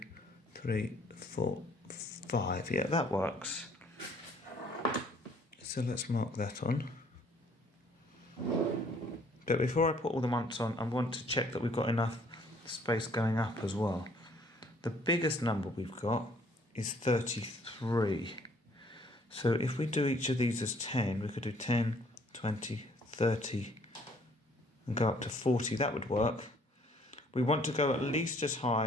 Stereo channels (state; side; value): normal; both; correlation 0.61